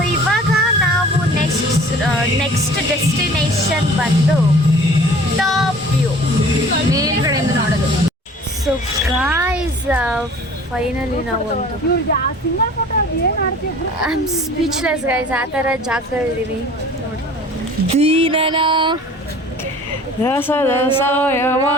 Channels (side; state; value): both; normal; correlation 0.47